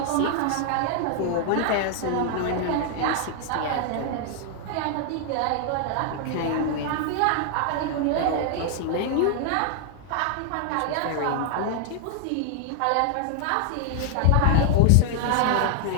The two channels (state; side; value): different; both; correlation 0.00